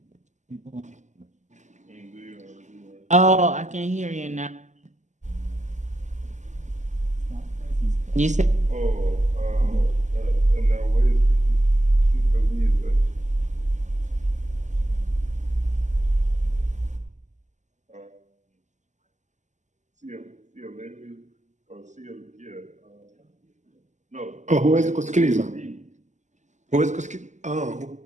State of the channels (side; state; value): left; late; 0.34 ms